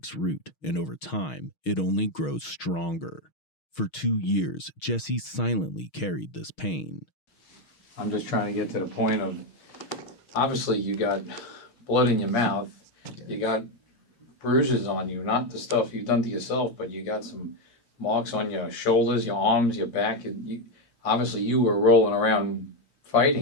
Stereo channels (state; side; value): late; right; 6.4 ms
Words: root, and over time, it only grows stronger. For 2 years, Jesse silently carried this pain. I'm just trying to get to the point of, obviously you got blood in your mouth, you got bruises on you, not the stuff you've done to yourself, but you got some marks on your shoulders, your arms, your back. Obviously you were rolling around